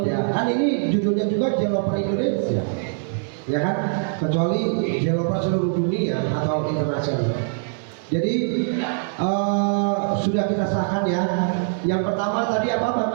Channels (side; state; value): left; silent; digital silence